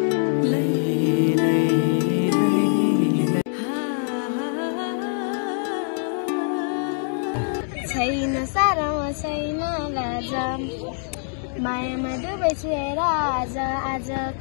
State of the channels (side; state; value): right; silent; 63 dB below the other